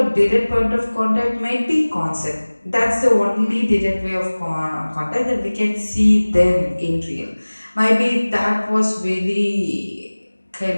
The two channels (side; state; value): both; inverted; correlation -1.00